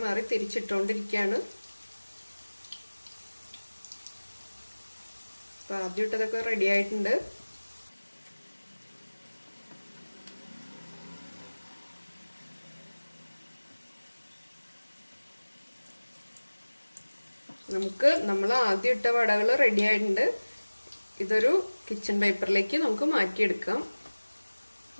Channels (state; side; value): inverted; both; correlation -1.00